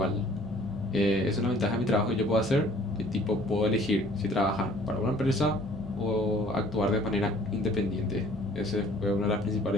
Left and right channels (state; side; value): normal; both; correlation 0.55